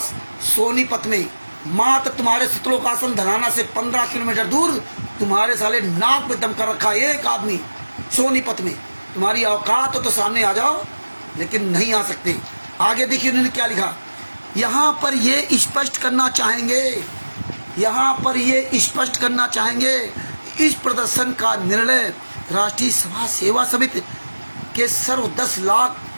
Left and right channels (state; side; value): inverted; both; correlation -1.00